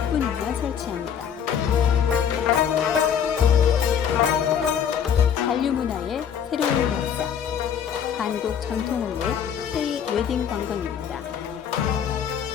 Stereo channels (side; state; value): right; quieter; 8.2 dB